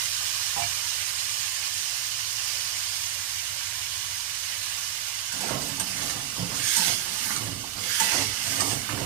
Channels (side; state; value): left; quieter; 12.0 dB